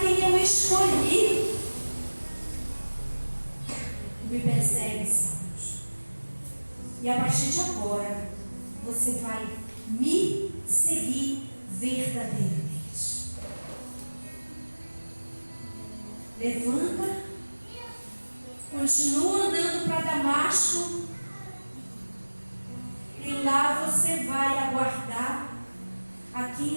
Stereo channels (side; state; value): both; inverted; correlation -1.00